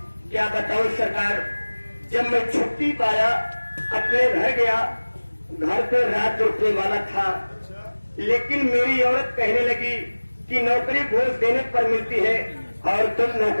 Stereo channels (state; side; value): inverted; both; correlation -1.00